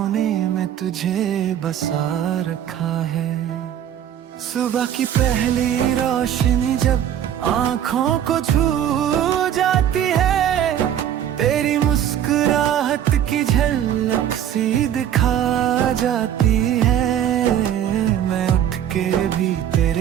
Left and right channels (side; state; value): left; quieter; 10.2 dB